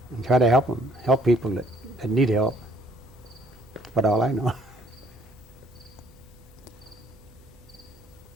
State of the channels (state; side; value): noise; right; hum, 26 dB below the sound